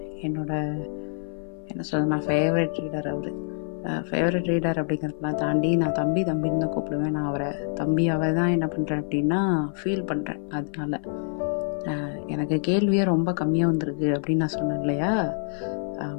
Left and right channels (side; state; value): right; silent; 56 dB below the other